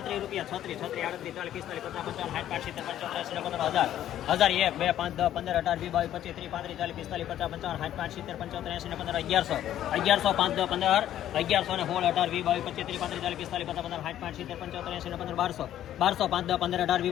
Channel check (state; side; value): quieter; right; 11.8 dB